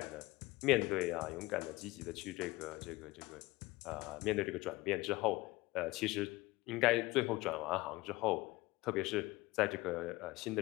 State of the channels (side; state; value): right; quieter; 20.5 dB